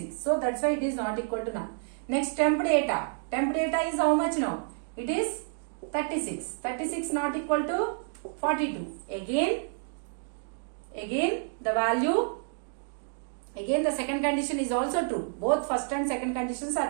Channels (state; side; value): silent; left; digital silence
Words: So that's why it is not equal to null. Next temp data. Temp data is how much now? It is 36. 36 not equal to 42. Again the value, again the second condition is also true. Both first and second conditions